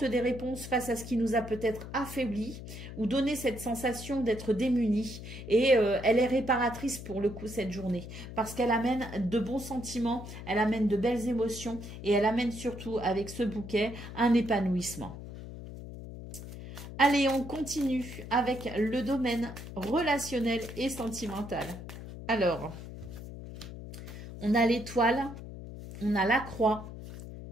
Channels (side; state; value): left; noise; hum, 11 dB below the sound